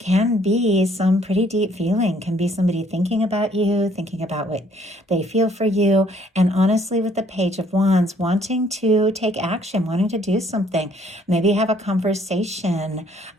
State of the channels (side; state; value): both; normal; correlation 0.63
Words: be some pretty deep feeling, can be somebody thinking about you, thinking about what they feel for you, and honestly with the Page of Wands, wanting to take action, wanting to do something, maybe have a conversation